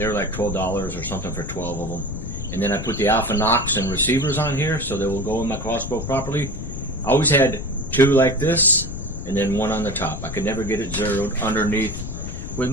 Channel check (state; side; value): noise; left; rumble, 7 dB below the sound